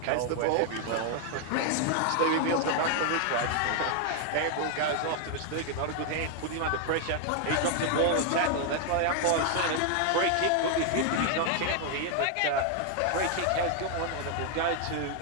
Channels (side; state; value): both; different; correlation 0.00